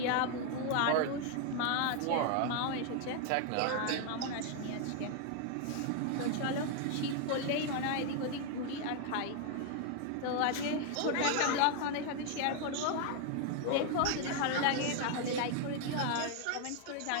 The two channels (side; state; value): both; different; correlation 0.00